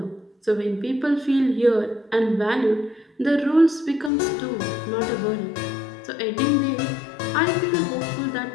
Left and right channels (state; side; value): drops out; right; at 4.1 s